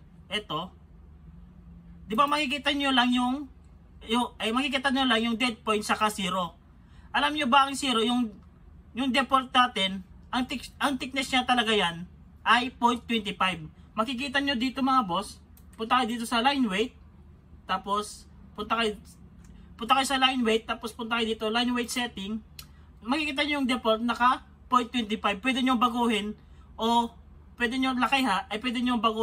ito, di ba makikita nyo lang yung dead point saka 0. Alam nyo ba ang 0, yung default natin, ang thickness niya talaga yan ay 0.25. Makikita nyo dito mga boss, punta kayo dito sa line weight, tapos punta kayo sa line weight, tapos punta kayo dito, line weight setting, makikita nyo yung default naka 0.25. Pwede nyo baguhin o pwede nyo lakiha, ay pwede nyo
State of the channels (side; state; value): both; identical; correlation 1.00